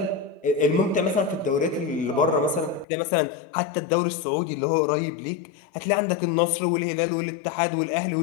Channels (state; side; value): drops out; right; at 2.9 s